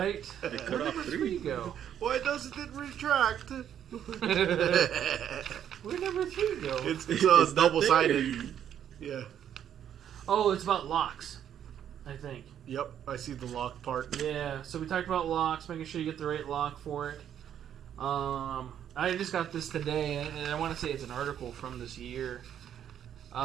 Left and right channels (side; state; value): left; quieter; 9.7 dB